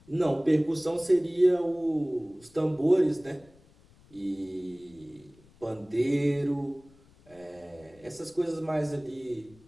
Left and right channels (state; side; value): noise; left; rumble, 27 dB below the sound